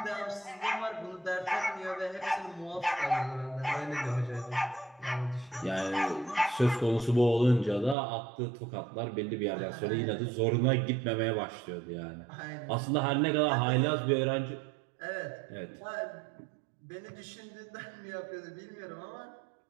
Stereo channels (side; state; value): left; drops out; at 8.0 s